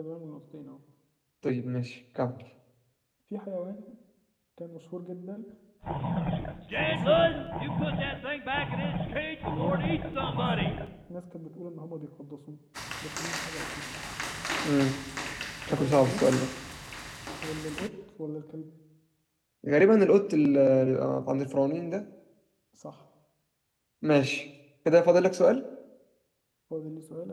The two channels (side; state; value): both; identical; correlation 1.00